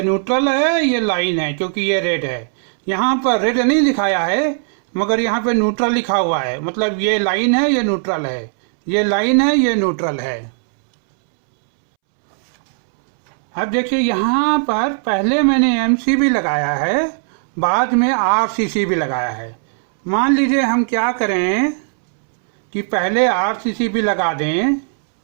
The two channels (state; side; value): silent; left; 68 dB below the other